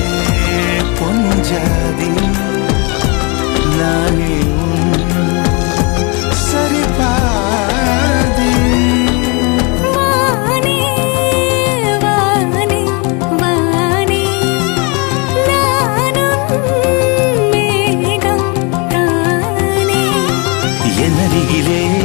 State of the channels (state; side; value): quieter; right; 31.3 dB